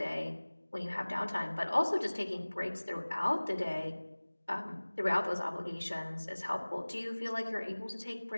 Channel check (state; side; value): inverted; both; correlation -1.00